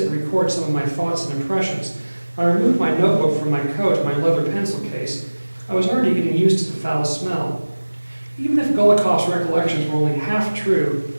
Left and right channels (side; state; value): both; inverted; correlation -1.00